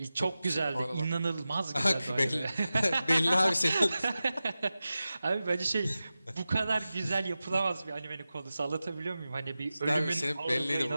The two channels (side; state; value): both; inverted; correlation -0.94